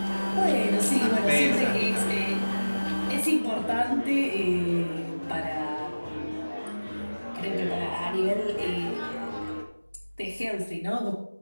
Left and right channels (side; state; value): both; inverted; correlation -1.00